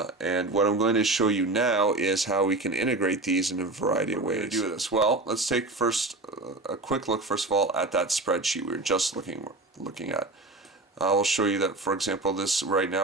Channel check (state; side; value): quieter; left; 3.0 dB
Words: what I'm going to show you now is how we can integrate these in a variety of ways. Do this. Well, let's take first a quick look, first of all, at that spreadsheet we were just looking at. I will show you that, for example, this right